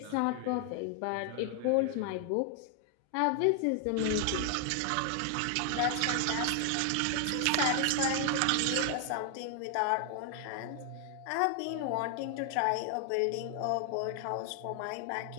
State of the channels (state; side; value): different; both; correlation 0.00